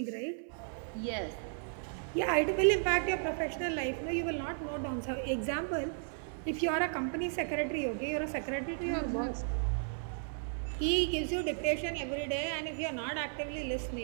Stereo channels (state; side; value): silent; left; 55 dB below the other